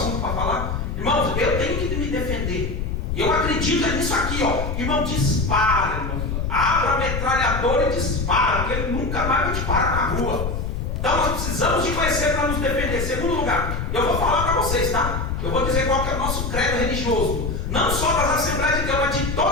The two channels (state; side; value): noise; left; rumble, 3 dB below the sound